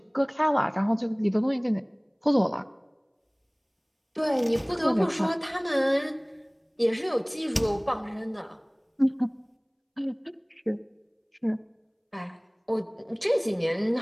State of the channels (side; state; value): both; identical; correlation 1.00